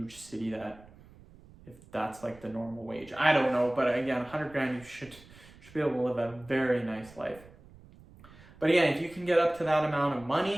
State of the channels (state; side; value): noise; right; rumble, 22 dB below the sound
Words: city that, if that's like the normal wage, I don't know. But again, 100 grand, you should be able to live a very nice life. But again, if you can get up to that amount of